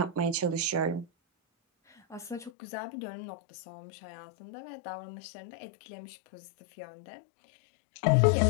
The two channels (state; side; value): drops out; right; at 2.5 s